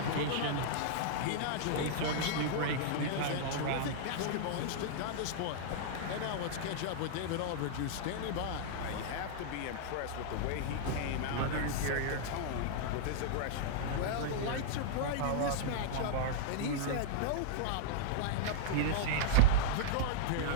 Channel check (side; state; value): both; different; correlation -0.02